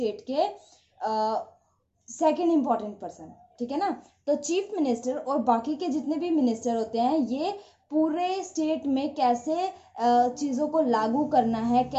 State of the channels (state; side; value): identical; both; correlation 1.00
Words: के सेकंड इंपॉर्टेंट पर्सन, ठीक है ना। तो चीफ मिनिस्टर और बाकी के जितने भी मिनिस्टर होते हैं, ये पूरे स्टेट में कैसे चीज़ों को लागू करना है,